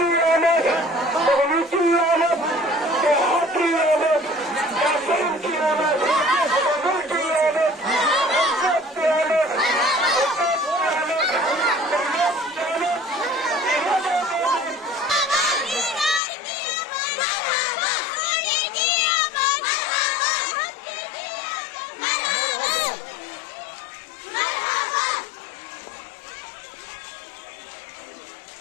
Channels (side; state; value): right; drops out; at 16.2 s